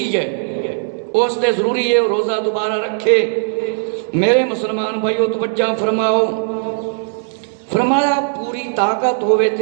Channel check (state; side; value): silent; left; digital silence